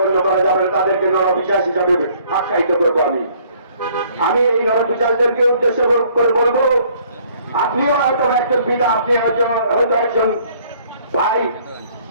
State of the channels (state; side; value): inverted; both; correlation -0.60